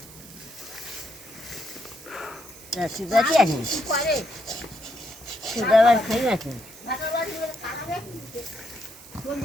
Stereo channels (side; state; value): right; noise; hiss, 18 dB below the sound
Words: সুগারই আছে সুগার খাই আছে